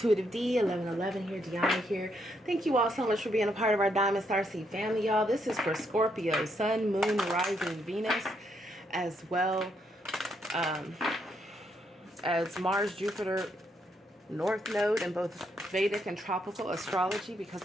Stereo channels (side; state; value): both; normal; correlation 0.76